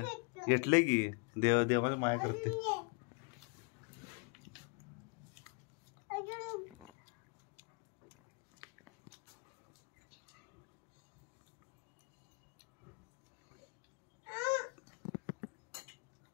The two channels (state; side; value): quieter; right; 34.1 dB